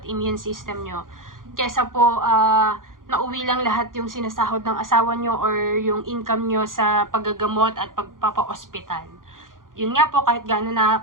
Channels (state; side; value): late; left; 0.90 ms